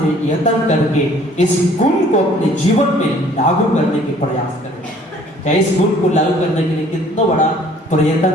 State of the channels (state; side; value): normal; both; correlation 0.55